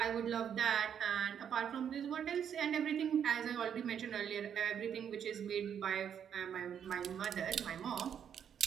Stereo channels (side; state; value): left; quieter; 8.4 dB